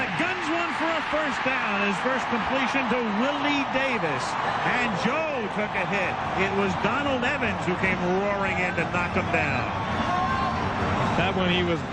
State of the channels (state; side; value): identical; both; correlation 1.00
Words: guns one for a first down. His first completion to Willie Davis. And Joe took a hit. It was Donald Evans who came roaring in to knock him down. That one he was